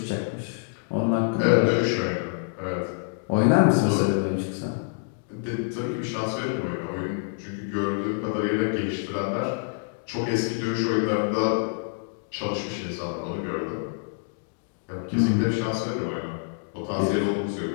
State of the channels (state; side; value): silent; right; digital silence